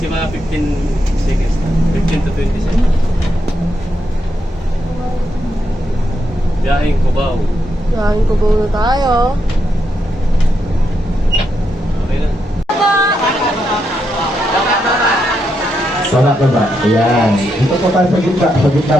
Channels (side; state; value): both; normal; correlation 0.82